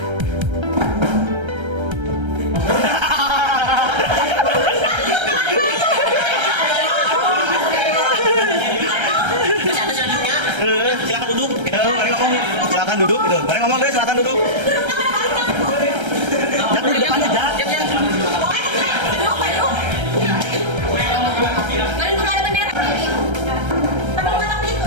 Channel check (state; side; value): late; left; 1.3 ms